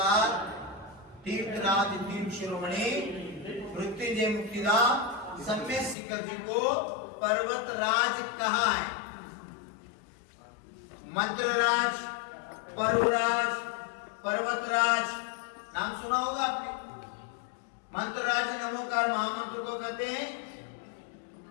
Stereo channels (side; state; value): right; drops out; at 6.0 s